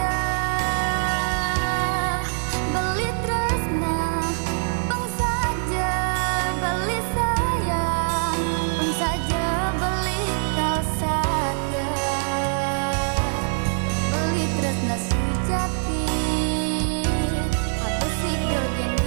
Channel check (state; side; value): silent; left; digital silence